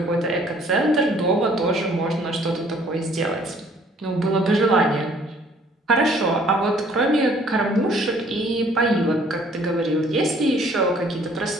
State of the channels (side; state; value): both; normal; correlation 0.59